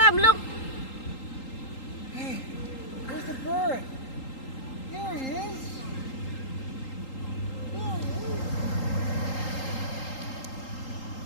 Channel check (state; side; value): late; right; 3.8 ms